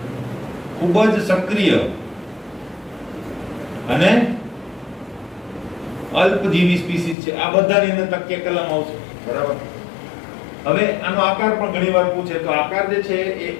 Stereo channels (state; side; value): drops out; right; at 7.2 s